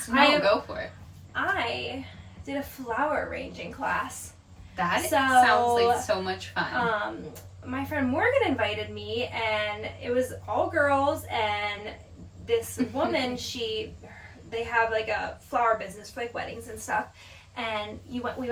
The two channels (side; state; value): both; identical; correlation 1.00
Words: No, go for it. I did a flower arranging class. That sounds like so much fun. My friend Morgan invited me, and it was all girls, and this woman, they have like a flower business for like weddings and stuff, and we